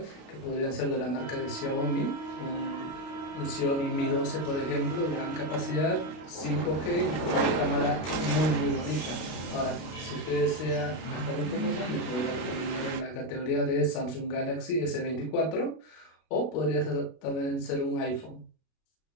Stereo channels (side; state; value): right; late; 32 ms